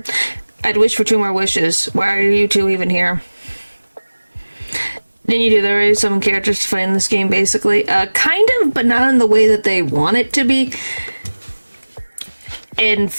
I'd wish for 2 more wishes. Why are you 2 even here? Didn't you do there are some characters to fight in this game, basically? Kind of, but not in the way that they want it to be. And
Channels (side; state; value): both; inverted; correlation -1.00